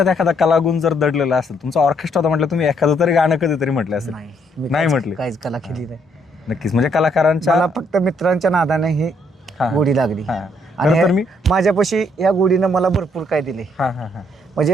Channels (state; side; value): normal; both; correlation 0.70